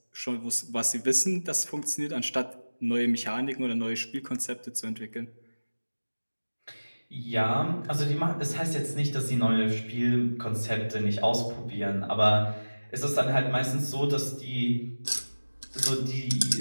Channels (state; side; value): inverted; both; correlation -1.00